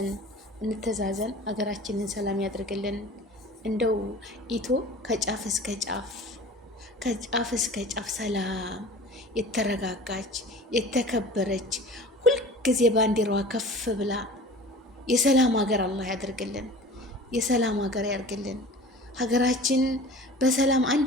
አገራችንን ሰላም ያድርግልን። እንደው ኢቶ ከጫፍ እስከ ጫፍ ሰላም የተረጋጋች የተከበረች ሁልጊዜ ባንዲራዋ ከፍ ብላ የሰላም ሀገር አላህ ያድርግልን። የሰላም ሀገር ያድርግልን። ሀገራችን በሰላም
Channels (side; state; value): both; normal; correlation 0.41